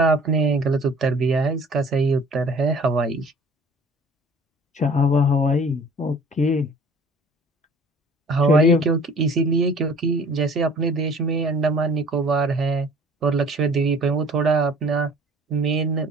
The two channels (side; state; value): both; normal; correlation 0.49